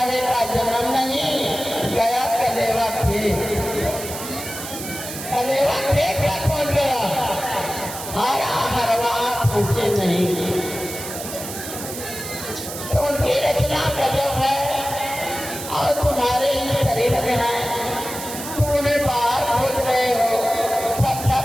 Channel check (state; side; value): noise; right; hiss, 9 dB below the sound